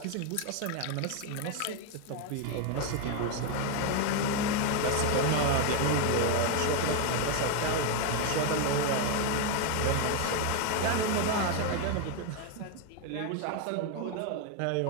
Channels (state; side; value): different; both; correlation 0.01